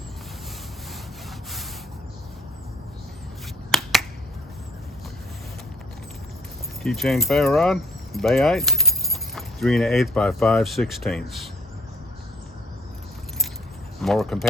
Keychain ferro rod, bayite, 3 1/8 by 5/16. More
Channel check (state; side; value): normal; both; correlation 0.61